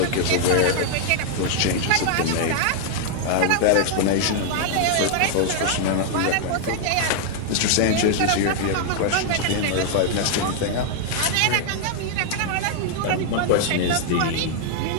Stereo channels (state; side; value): different; both; correlation 0.00